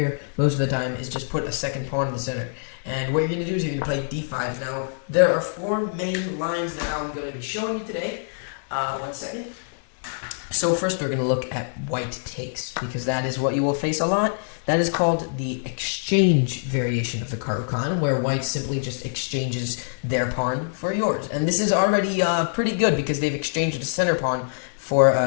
most of the time is just put a second pawn in the center. And what you're going to do is you're going to play d5. Now, there are 4 main lines that I'm going to be showing you today. One second. So first we're going to look at White takes, because that is what you will face a lot. That is called the exchange variation of the Caro Kann, where White simply just exchanges their pawn for yours. And this is already pretty good, because they've exchanged a center pawn for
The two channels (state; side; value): silent; right; 62 dB below the other